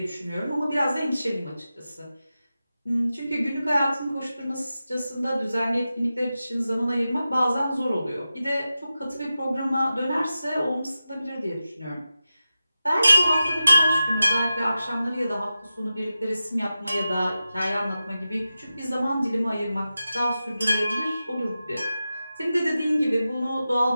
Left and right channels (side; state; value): both; inverted; correlation -0.93